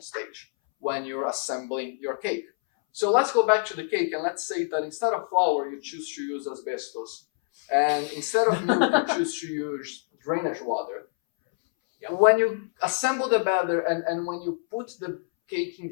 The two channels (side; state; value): right; silent; 61 dB below the other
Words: stage when you're assembling your cake. So let's go back to the cake, and let's say that instead of flour, you choose to use asbestos. And instead of milk, you choose to use drainage water. Yep. When you assemble the batter and when you put the cake in